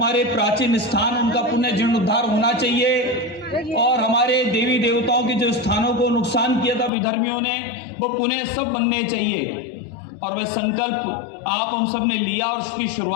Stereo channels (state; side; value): drops out; right; at 6.9 s